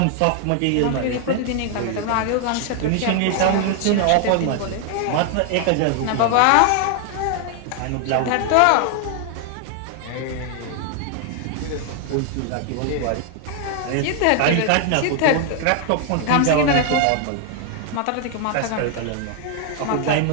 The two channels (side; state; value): both; different; correlation 0.00